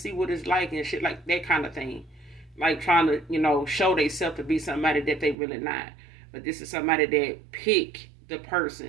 see what it's like and shit like that kind of thing. Like, trying to, show themselves to be somebody that they really not. But this is somebody that pick the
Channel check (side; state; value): left; drops out; at 5.4 s